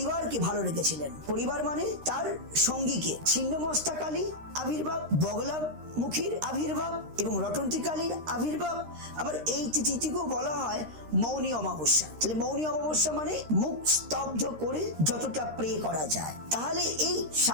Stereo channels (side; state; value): left; late; 13 ms